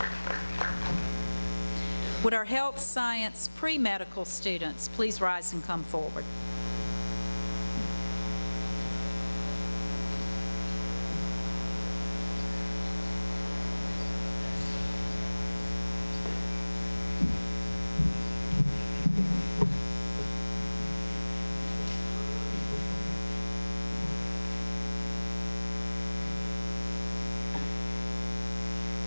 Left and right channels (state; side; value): inverted; both; correlation -1.00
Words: Would our health science pre-medical students please rise and come forward?